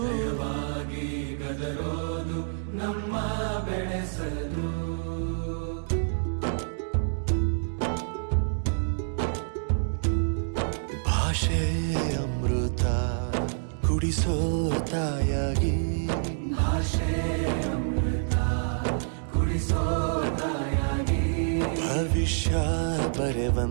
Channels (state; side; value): silent; left; digital silence